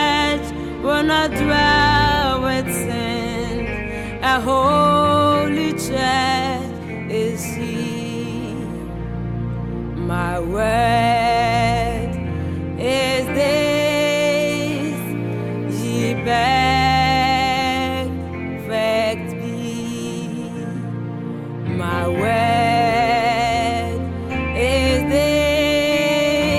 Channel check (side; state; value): both; identical; correlation 1.00